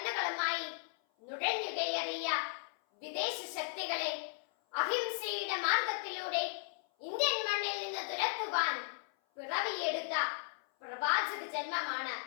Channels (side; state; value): right; silent; 54 dB below the other